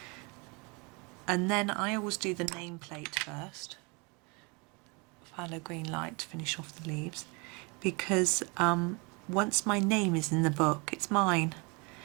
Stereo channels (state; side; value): quieter; left; 29.8 dB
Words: And then I always do the nameplate first. Pthalo green light to finish off the leaves, because once my name is in the book, it's mine.